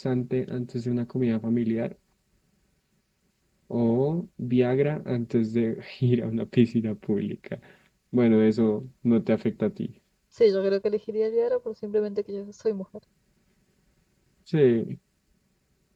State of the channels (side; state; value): both; identical; correlation 1.00